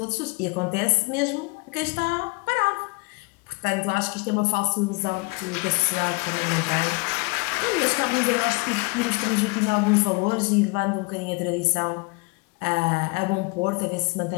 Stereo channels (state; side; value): quieter; right; 28.5 dB